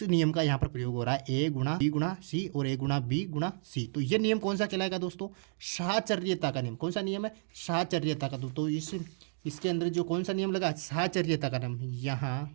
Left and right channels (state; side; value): silent; left; digital silence